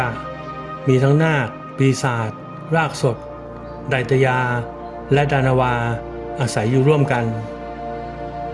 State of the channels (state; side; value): identical; both; correlation 1.00